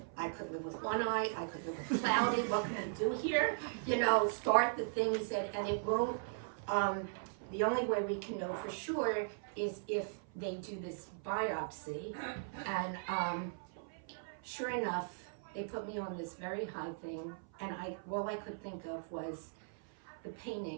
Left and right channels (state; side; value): silent; left; 52 dB below the other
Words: I could live with one eye. I could live with cloudy. What can we do here? You know, start the thing. He said, and it won't, the only way we can know for sure is if they do this biopsy. And sure enough, they put me on this very high thing. And all I could think of was the